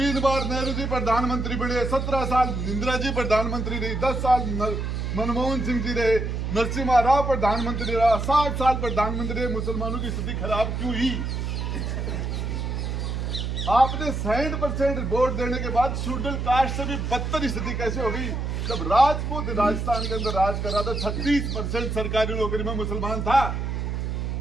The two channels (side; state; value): right; noise; hum, 2 dB below the sound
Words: बार नेहरू जी प्रधानमंत्री बने, 17 साल इंदिरा जी प्रधानमंत्री रही, 10 साल मनमोहन सिंह जी रहे, नरसिम्हा राव प्रधानमंत्री रहा, 60 साल प्रधानमंत्री रहे। मुसलमानों की स्थिति खराब क्यों हुई? आपने 60% वोट देने के बाद शेड्यूल कास्ट से भी बदतर स्थिति कैसे हो गई? जब राजपूत राजस्थान के अंदर राज कर रहा था, 36% सरकारी नौकरी में मुसलमान था।